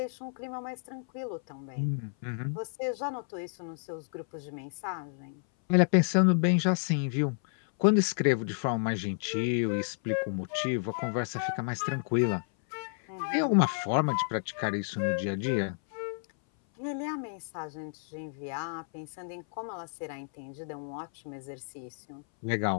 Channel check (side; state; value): right; silent; 57 dB below the other